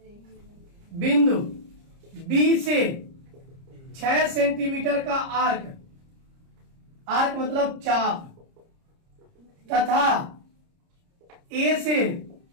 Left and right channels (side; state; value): left; late; 30 ms